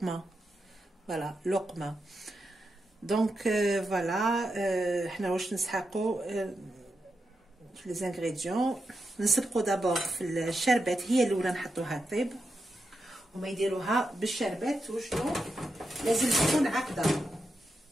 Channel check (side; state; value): both; normal; correlation 0.87